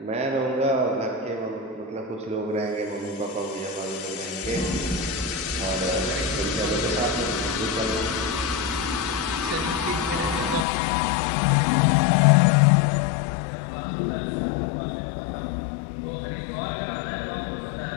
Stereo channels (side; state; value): right; drops out; at 10.7 s